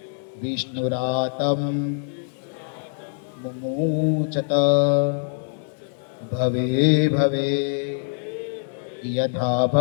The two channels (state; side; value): silent; right; digital silence